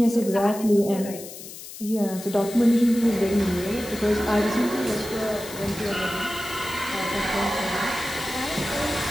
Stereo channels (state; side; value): noise; left; hiss, 13 dB below the sound